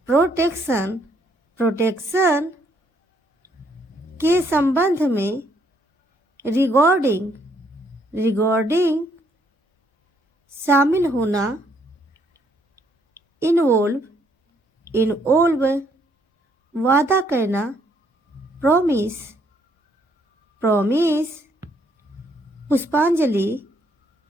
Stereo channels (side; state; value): both; normal; correlation 0.69